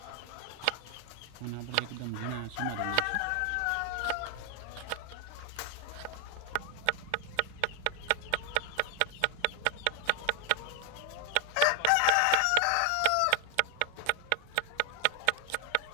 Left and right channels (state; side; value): different; both; correlation 0.00